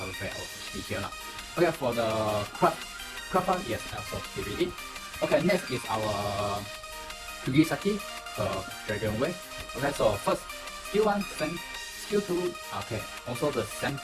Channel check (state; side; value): identical; both; correlation 1.00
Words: back our HP here. Okay, for the craft, yes, I also give it. Okay, next is our Kugisaki Dragonware. Okay, so first skill 1 same, skill 2 okay, also the same